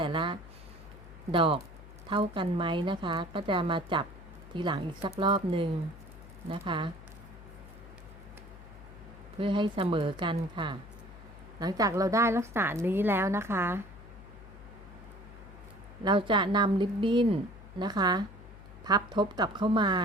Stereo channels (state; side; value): noise; left; hum, 17 dB below the sound